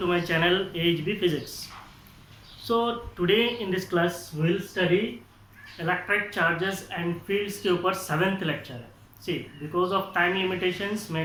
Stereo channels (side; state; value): both; identical; correlation 1.00